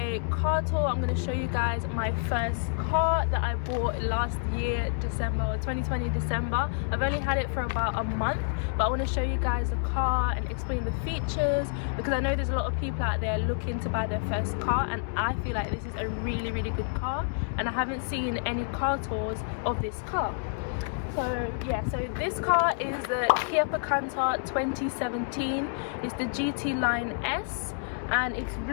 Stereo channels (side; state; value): right; silent; digital silence